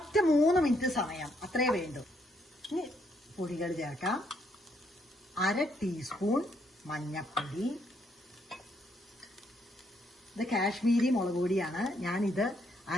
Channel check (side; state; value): both; normal; correlation 0.73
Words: 3 മിനിറ്റ് സമയം അത്രേ വേണ്ടു. ഇനി പൊടികൾ ചേർക്കാം. 1/2 ടീസ്പൂൺ മഞ്ഞൾപ്പൊടി. ഇത് കാശ്മീരി മുളക് പൊടിയാണ്. ഞാനിത്